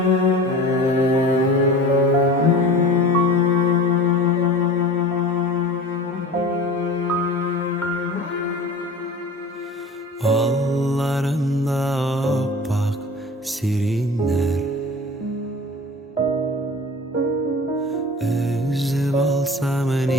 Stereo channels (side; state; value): both; normal; correlation 0.38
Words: opak sirinler, üzüp alsam